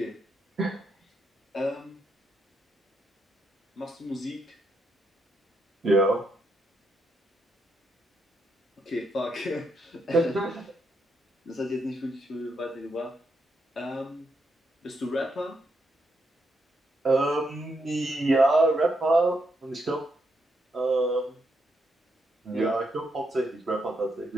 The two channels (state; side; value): normal; both; correlation 0.79